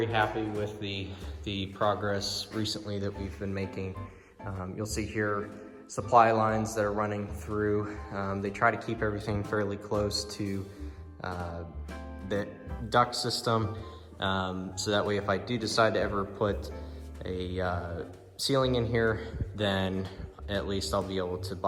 happy with the progress recently that we've been making. You'll see here supply lines that are running through. They try to keep everything fairly close to the duct system, so that way if I do decide to ever put a ceiling in here, then at least I'll be able to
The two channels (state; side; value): identical; both; correlation 1.00